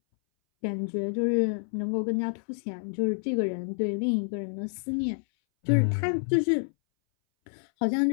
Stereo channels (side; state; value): right; silent; 59 dB below the other